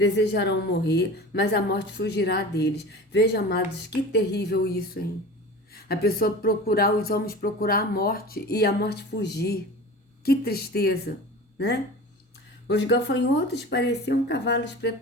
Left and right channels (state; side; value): normal; both; correlation 0.36